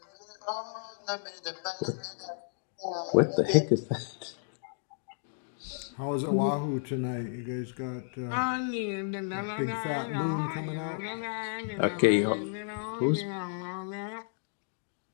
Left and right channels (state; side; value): silent; right; digital silence